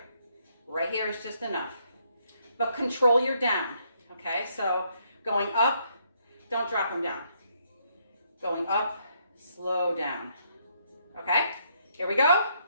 Right here is just enough. But control your down, okay? So going up, don't drop them down. Going up, slow down. Okay, here we go.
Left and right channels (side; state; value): both; inverted; correlation -0.73